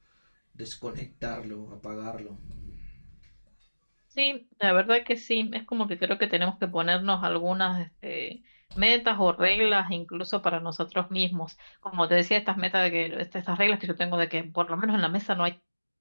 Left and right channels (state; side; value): inverted; both; correlation -1.00